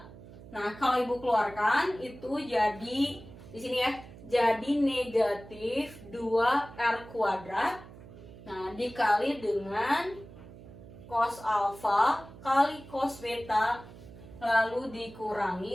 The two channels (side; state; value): right; noise; hum, 17 dB below the sound